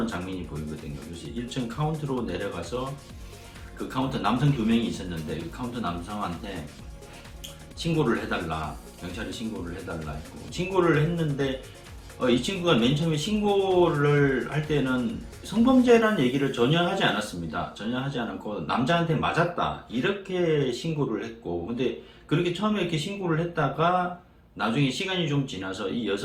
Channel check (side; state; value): both; identical; correlation 1.00